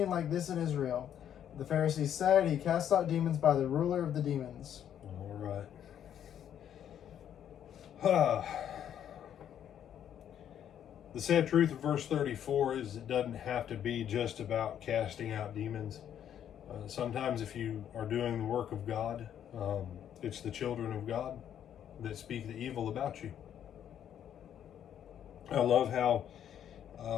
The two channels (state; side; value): quieter; right; 9.8 dB